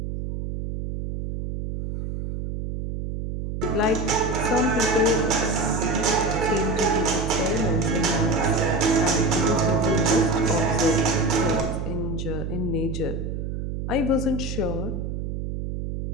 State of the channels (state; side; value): noise; right; hum, 5 dB below the sound